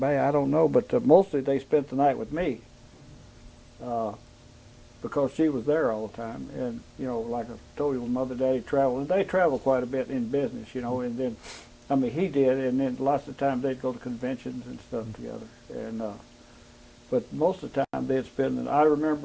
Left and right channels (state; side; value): identical; both; correlation 1.00